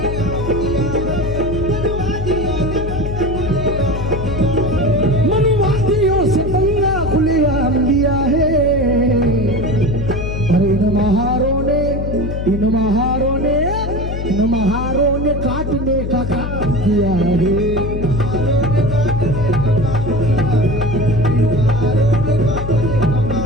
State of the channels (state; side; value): noise; left; hum, 4 dB below the sound